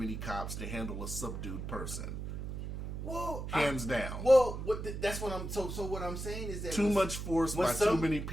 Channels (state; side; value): noise; right; hum, 6 dB below the sound